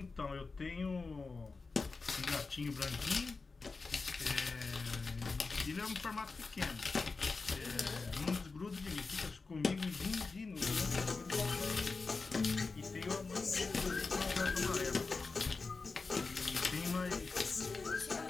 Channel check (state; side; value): quieter; right; 4.2 dB